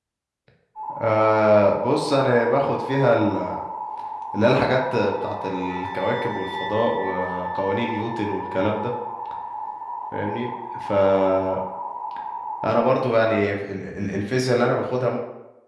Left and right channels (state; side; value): identical; both; correlation 1.00